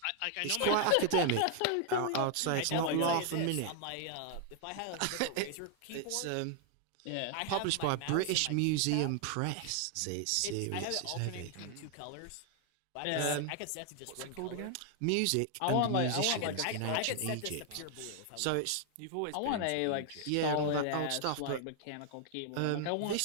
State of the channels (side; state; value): both; different; correlation 0.00